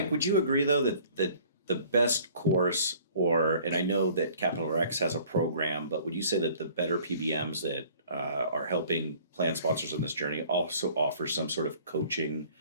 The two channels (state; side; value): inverted; both; correlation -0.53